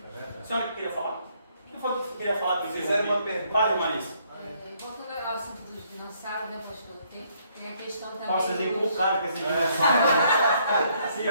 A senhora que queria falar? O que foi que queria falar? Fizeram uma pergunta. Fale, Marisa. Voltando ao assunto dos dinossauros, né, pastor? Tem a questão também. Nossa, vocês dos- inculcaram com esse dinossauro. Sim,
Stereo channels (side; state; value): both; inverted; correlation -0.69